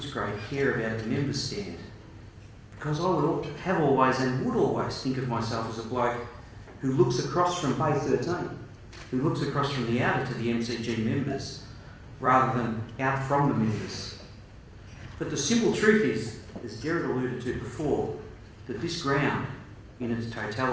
care about the member stand? Because I would have always and would always think of myself as a bloke who looks across from Bay 13, who looks across from the outer to the MCG members, rather than out from the members. But the simple truth is, as Gerard alluded to before, that this ground, in its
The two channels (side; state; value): both; identical; correlation 1.00